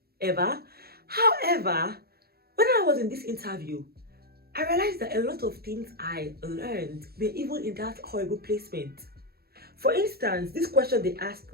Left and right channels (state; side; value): late; left; 0.45 ms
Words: ever. However, when I was in this interview, I realized that a lot of things I learned were even in that horrible placement. For instance, this question they asked